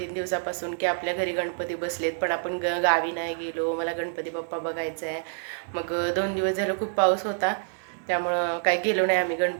दिवसापासून की आपल्या घरी गणपती बसलेत, पण आपण गावी नाही गेलो. मला गणपती बाप्पा बघायचा आहे. मग 2 दिवस झालं खूप पाऊस होता, त्यामुळं काही गेलो नाही आम्ही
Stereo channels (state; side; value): silent; left; digital silence